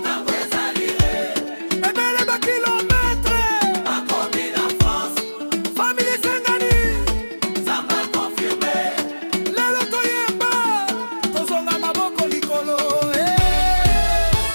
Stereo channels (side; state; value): both; inverted; correlation -1.00